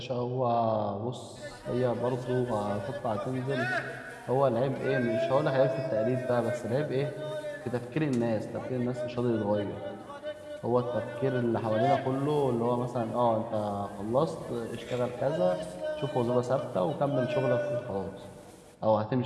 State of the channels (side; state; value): both; identical; correlation 1.00